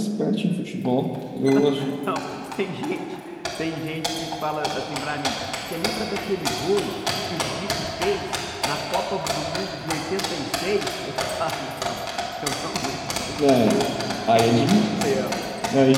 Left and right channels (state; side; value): identical; both; correlation 1.00